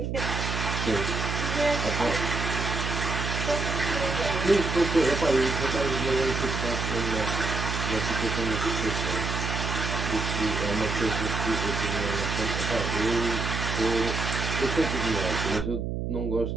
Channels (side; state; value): right; noise; hum, 2 dB below the sound